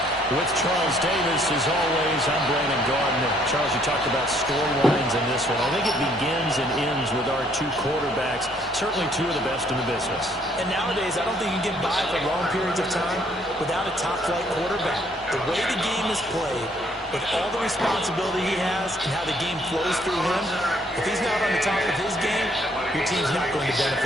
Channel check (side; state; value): both; normal; correlation 0.65